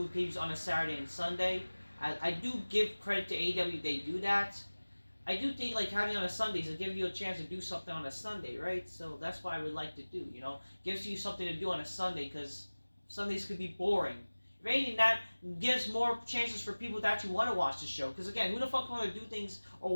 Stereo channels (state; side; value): inverted; both; correlation -1.00